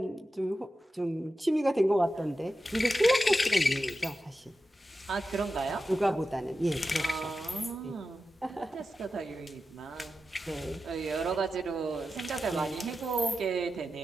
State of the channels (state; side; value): normal; both; correlation 0.91